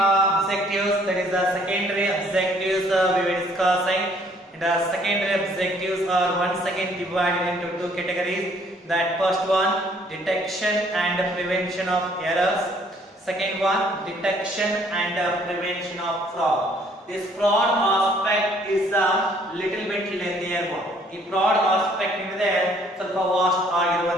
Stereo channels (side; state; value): both; normal; correlation 0.62